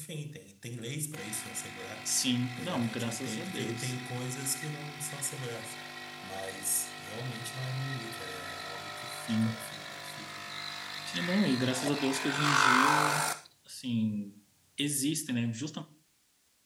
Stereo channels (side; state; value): both; identical; correlation 1.00